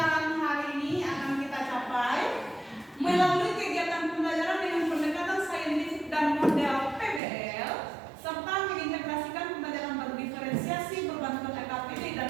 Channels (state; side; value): drops out; left; at 7.2 s